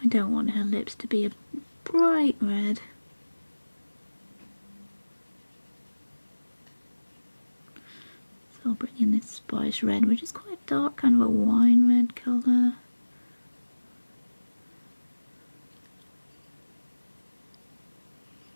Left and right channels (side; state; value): both; inverted; correlation -1.00